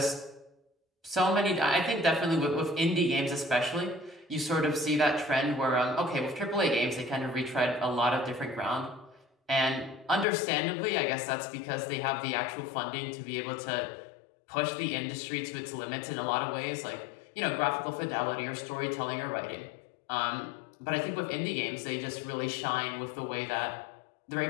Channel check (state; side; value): drops out; right; at 10.2 s